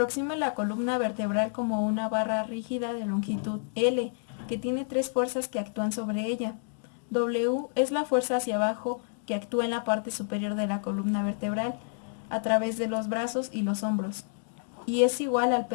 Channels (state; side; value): silent; right; digital silence